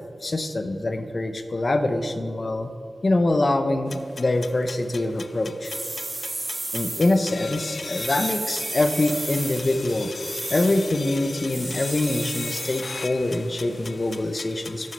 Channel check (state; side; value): normal; both; correlation 0.96